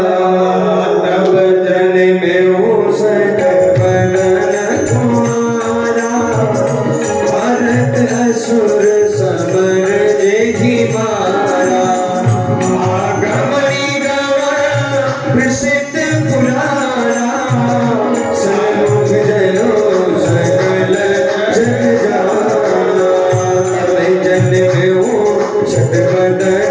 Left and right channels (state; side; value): identical; both; correlation 1.00